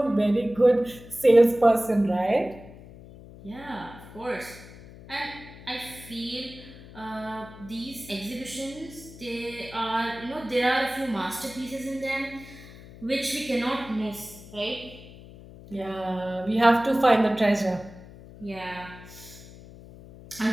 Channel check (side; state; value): left; noise; hum, 18 dB below the sound